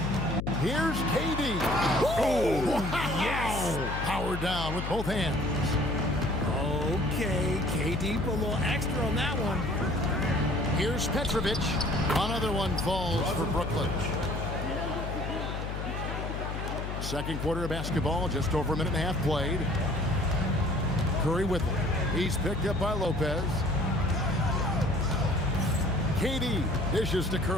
Here's KD. Oh, wow. Yes! Power down with both hands. Okay, KD put a little extra on that one. Here's Petrovic. Another one falls for Brooklyn. Second quarter of basketball, just over a minute and a half played. Curry with it. He's picked up by Lopez. KD dishes to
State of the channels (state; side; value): noise; left; hum, 5 dB below the sound